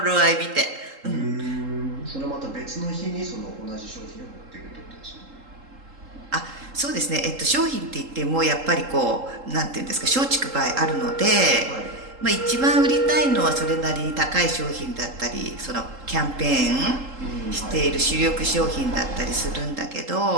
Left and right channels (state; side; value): late; left; 3.8 ms